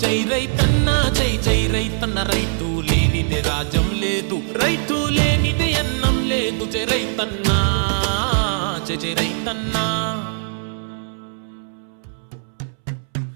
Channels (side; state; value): left; silent; 65 dB below the other